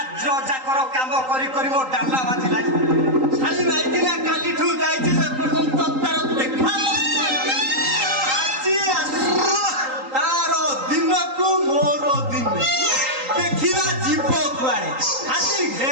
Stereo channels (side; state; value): left; late; 3.8 ms